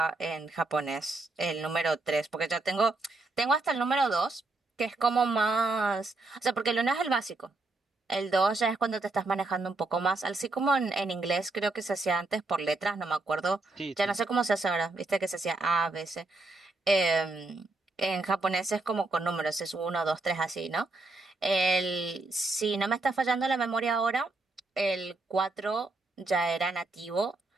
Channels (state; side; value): quieter; left; 3.3 dB